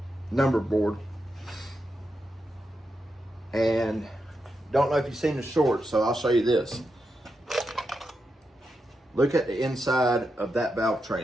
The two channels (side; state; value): both; normal; correlation 0.86